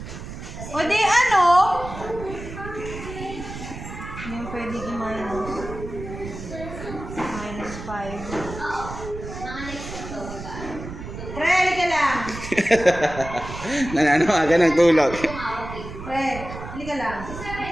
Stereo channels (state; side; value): noise; right; rumble, 10 dB below the sound